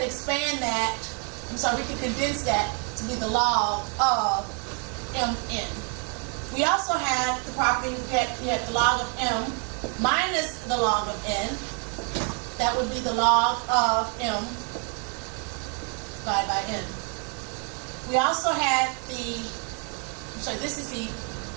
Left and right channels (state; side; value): quieter; left; 39.6 dB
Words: expand that, we could condense that to be the log of mn. We also had the property that you had the log of m minus the log of n. That would be the log of m divided by n. We also had this is the